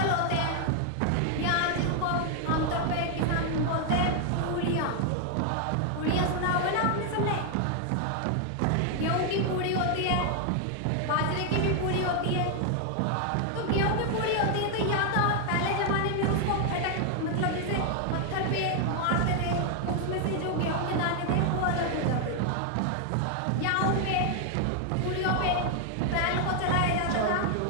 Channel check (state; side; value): different; both; correlation 0.00